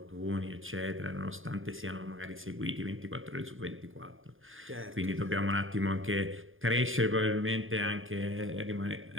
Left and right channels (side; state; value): left; late; 0.59 ms